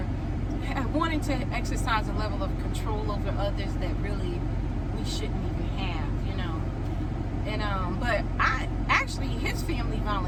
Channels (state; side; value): identical; both; correlation 1.00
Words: wanting to exercise a level of control over others that really we shouldn't even have, you know. And but his family